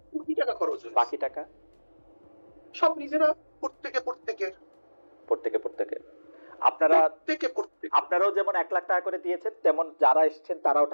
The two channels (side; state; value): both; inverted; correlation -1.00